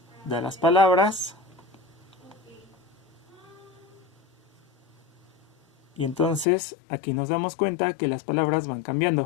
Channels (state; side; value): drops out; right; at 6.5 s